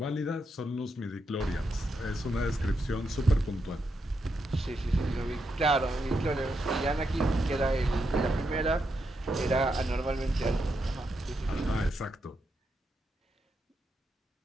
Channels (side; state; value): both; normal; correlation 0.83